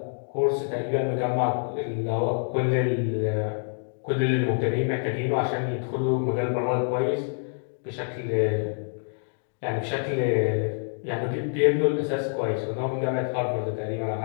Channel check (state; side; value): silent; right; digital silence